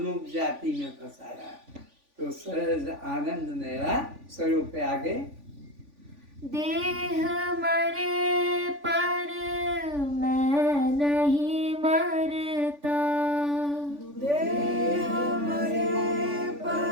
जाति में फंसाया। तो सहज आनंद मेरा स्वरूप है। आगे देह मरे पर मैं नहीं मरता, देह मरे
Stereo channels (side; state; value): left; late; 3.5 ms